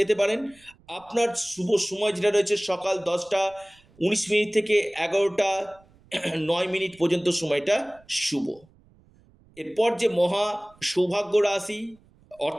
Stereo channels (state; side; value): noise; right; rumble, 30 dB below the sound